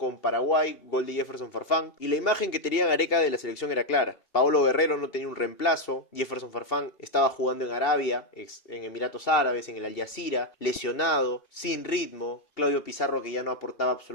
Paraguay, gol de Jefferson Farfán, y la imagen que tenía Gareca de la selección era clara. Paolo Guerrero no tenía un reemplazo, Jefferson Farfán estaba jugando en Arabia, en Emiratos Árabes, en el Al Jazeera, lesionado, sin ritmo, Claudio Pizarro que ya no aportaba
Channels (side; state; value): right; late; 2.7 ms